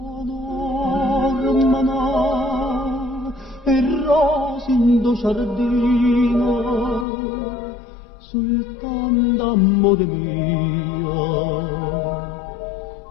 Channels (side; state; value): right; drops out; at 7.1 s